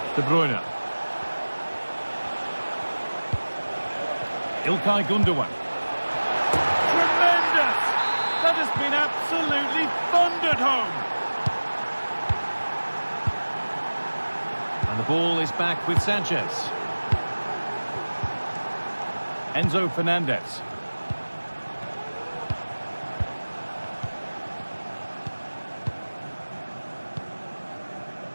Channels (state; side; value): inverted; both; correlation -1.00